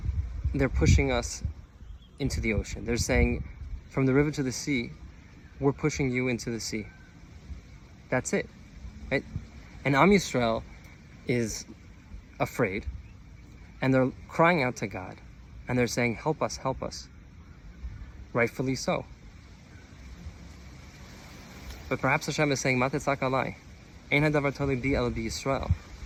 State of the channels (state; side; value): identical; both; correlation 1.00